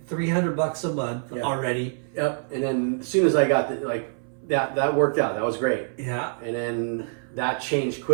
$300 a month Yeah. already. Yep. And then as soon as I got that worked out. That was great. Yeah. And then that changed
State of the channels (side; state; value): left; silent; 58 dB below the other